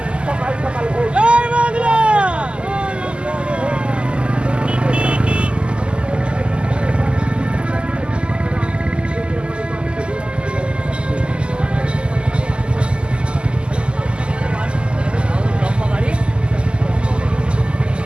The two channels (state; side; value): late; left; 0.051 ms